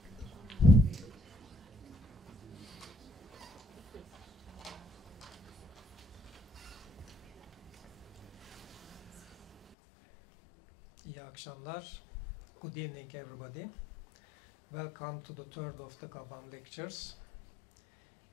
akşamlar. Good evening, everybody. Welcome to the third of the GABAM Lectures.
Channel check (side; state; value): right; drops out; at 9.8 s